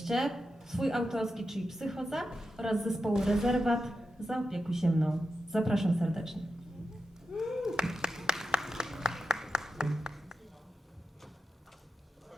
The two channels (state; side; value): normal; both; correlation 0.89